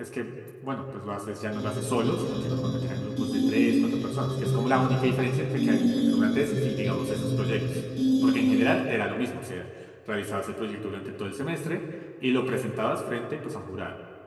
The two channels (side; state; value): both; identical; correlation 1.00